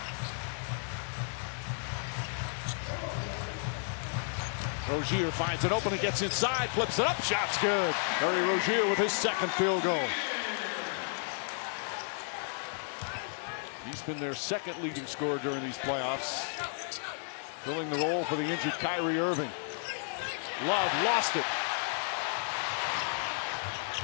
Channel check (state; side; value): silent; right; 56 dB below the other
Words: Rozier finds it open and gets inside, flips it up, shot's good. Terry Rozier with his second field goal. He's been their second leading scorer during these playoffs, filling the role for the injured Kyrie Irving. Love lost it.